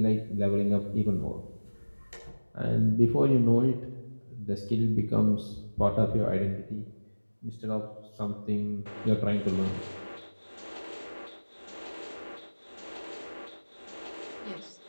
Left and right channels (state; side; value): inverted; both; correlation -1.00